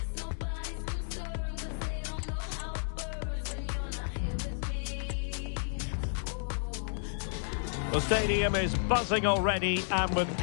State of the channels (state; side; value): silent; right; digital silence